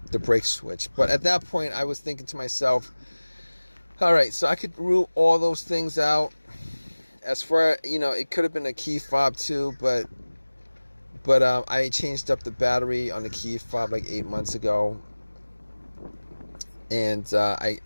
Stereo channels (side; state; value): both; inverted; correlation -1.00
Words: brake switch. But at that point, I was thinking to myself, all right, so I could rule all those things out. As far, it could have been a key fob too, but I changed up the battery on the key fob like 8 months ago, and